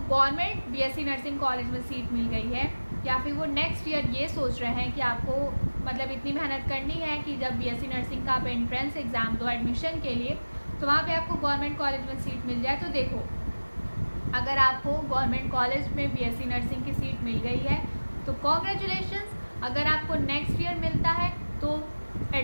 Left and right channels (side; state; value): both; inverted; correlation -1.00